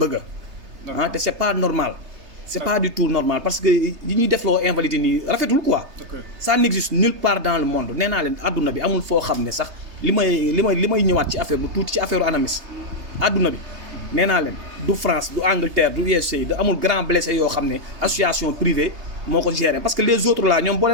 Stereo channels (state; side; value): late; left; 3.3 ms